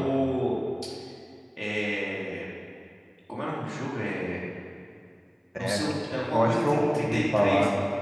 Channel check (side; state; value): both; identical; correlation 1.00